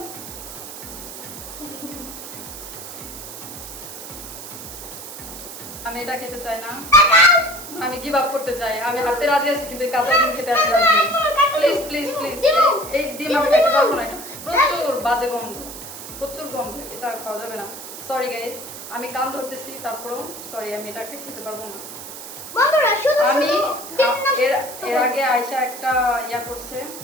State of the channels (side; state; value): right; noise; hiss, 12 dB below the sound